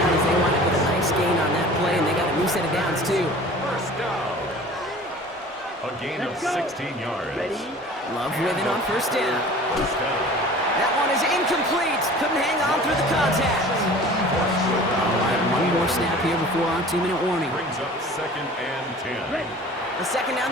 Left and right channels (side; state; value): both; normal; correlation 0.43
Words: as they wind up with a nice gain on that play, and they got a new set of downs, too. First down. A gain of 16 yards. Ready? Love with it on first down. First down. That one is incomplete. Couldn't hang on through the contact. All right, one more snap here before our 2-minute warning. Brings up 2nd and 10. Ready. The second down